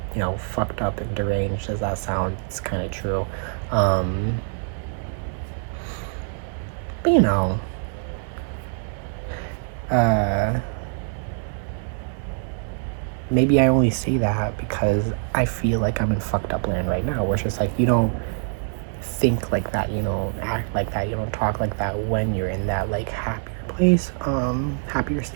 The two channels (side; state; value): left; silent; 62 dB below the other